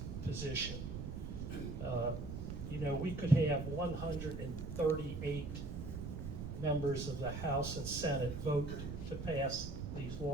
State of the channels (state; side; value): noise; right; rumble, 6 dB below the sound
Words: position. You know, we could have 138 members of the House and Senate vote to pass these